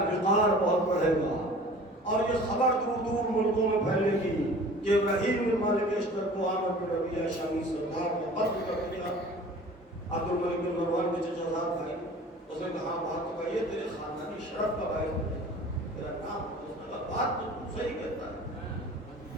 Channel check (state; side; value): normal; both; correlation 0.44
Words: وقار بہت بڑھے گا، اور یہ خبر دور دور ملکوں میں پھیلے گی کہ ابراہیم بن مالک اشتر کو عامر بن ربیعہ شامی سردار نے قتل کر دیا۔ عبد الملک بن مروان کے چچا زاد بھائی، اس نے کہا بات تو کہیے، تیرے خاندانی شرف کا بھائی تیرا نام، اس نے کہا بات تو تم صحیح کہتا ہے۔